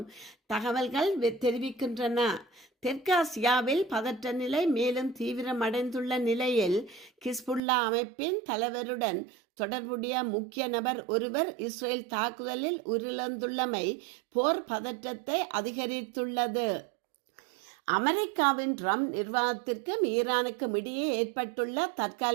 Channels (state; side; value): drops out; left; at 7.6 s